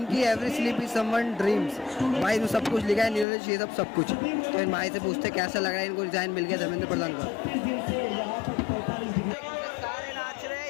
every sleep is someone dreams. भाई इसमें सब कुछ लिखा है, न्यूरोलॉजी ये सब कुछ। तो इन भाई से पूछते कैसा लग रहा है इनको डिजाइन मिल गया धर्मेंद्र प्रधान का। सारे नाच रहे हैं,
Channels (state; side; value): drops out; right; at 3.2 s